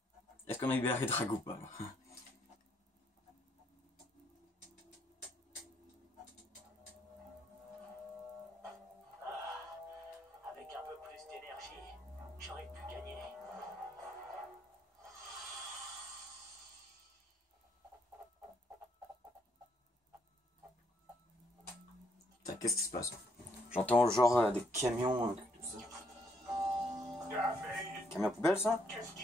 Est-ce qu'on a libéré Drago ou pas? Avec un peu plus d'énergie, j'aurais pu gagner. Putain, qu'est-ce qui se passe? J'entends genre des camions, tout ça. Camion poubelle ça?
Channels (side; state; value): both; normal; correlation 0.71